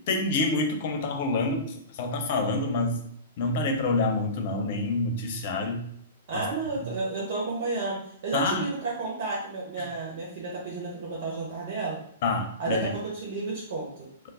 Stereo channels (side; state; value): both; inverted; correlation -0.31